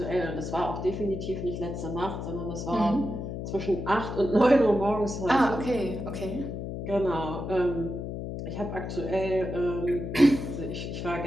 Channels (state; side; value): noise; left; hum, 6 dB below the sound